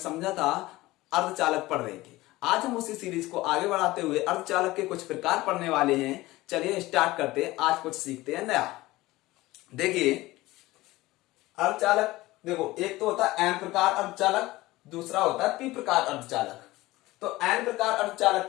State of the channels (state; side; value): quieter; right; 18.7 dB